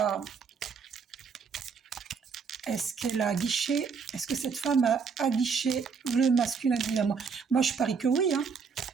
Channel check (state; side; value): quieter; left; 5.7 dB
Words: aguiché? Est-ce que cette femme a aguiché le masculin divin? Moi, je parie que oui, hein.